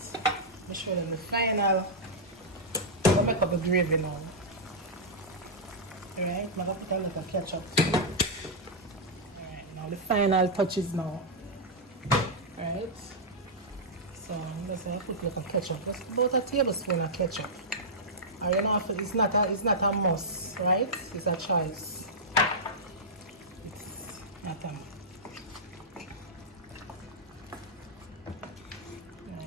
I'll show them the final. I'll make up the gravy now. Alright, I'm going to put a little ketchup. Alright, now the final touches now. Alright. So I'm just going to put a little ketchup. Just about a tablespoon of ketchup. Or you know, it's not a must, right? It's a choice. It's not a must.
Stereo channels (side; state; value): both; normal; correlation -0.09